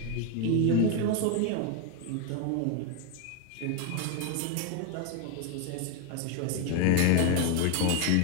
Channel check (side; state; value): both; different; correlation 0.01